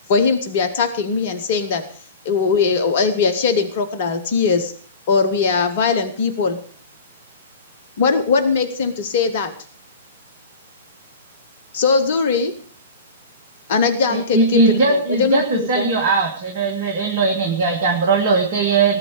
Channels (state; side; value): inverted; both; correlation -0.35